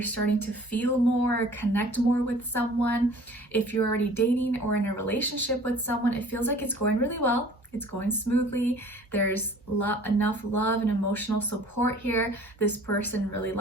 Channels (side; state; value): both; normal; correlation 0.49